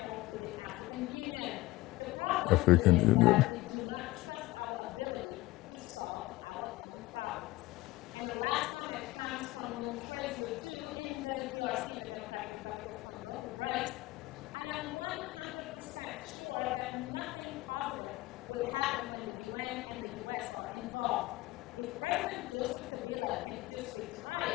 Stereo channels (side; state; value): right; quieter; 19.4 dB